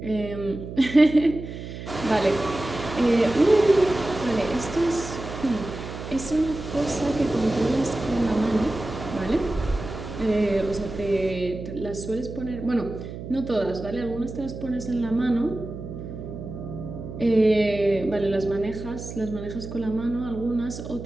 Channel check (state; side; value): noise; right; hum, 10 dB below the sound